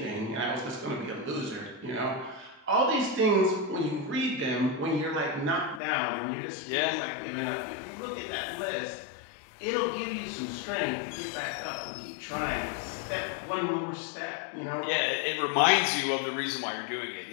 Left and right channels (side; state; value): right; drops out; at 5.8 s